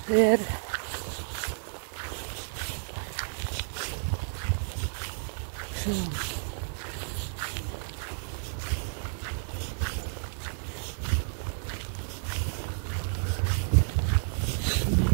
Det er det. Så.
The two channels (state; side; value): silent; left; 57 dB below the other